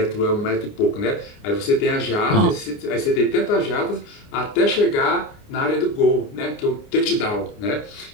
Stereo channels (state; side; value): late; right; 29 ms